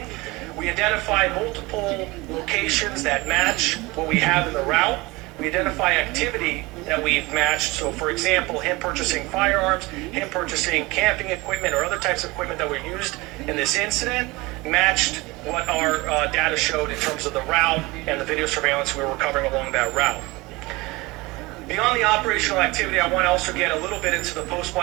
we identify multiple locations that match what we have in the route. We identify activity that we've matched. So, for example, him purchasing firearms, him purchasing camping equipment, or other types of equipment that were used in this incident matched what our data showed in terms of the route and the video surveillance we were recovering along that route. Beyond the operational activity, I want to also get a little bit into the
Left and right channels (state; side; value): quieter; left; 22.7 dB